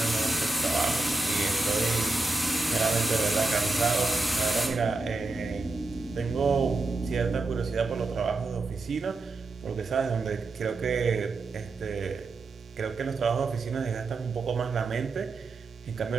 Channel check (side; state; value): left; quieter; 3.4 dB